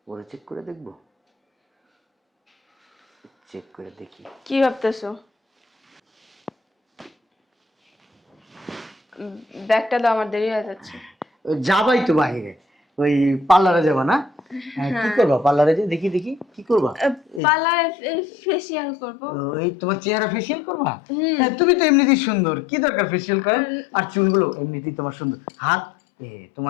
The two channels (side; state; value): right; drops out; at 17.4 s